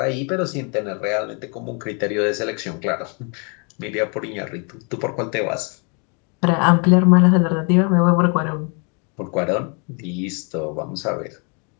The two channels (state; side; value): quieter; right; 35.6 dB